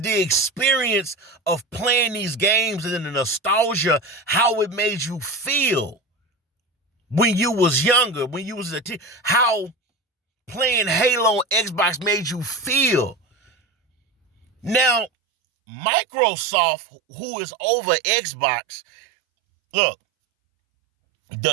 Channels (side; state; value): left; drops out; at 15.1 s